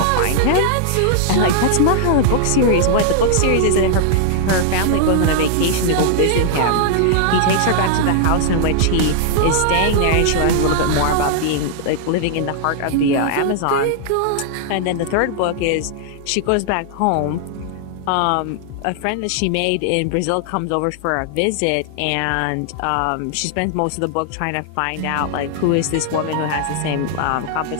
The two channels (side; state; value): both; different; correlation -0.01